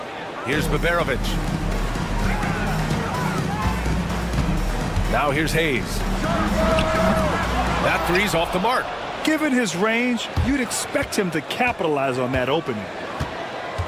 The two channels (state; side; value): identical; both; correlation 1.00